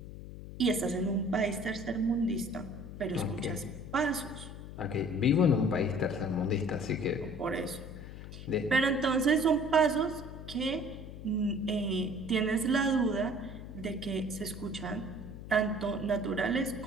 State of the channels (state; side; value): noise; left; hum, 12 dB below the sound